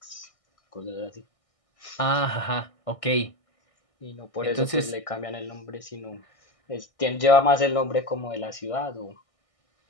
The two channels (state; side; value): late; right; 1.6 ms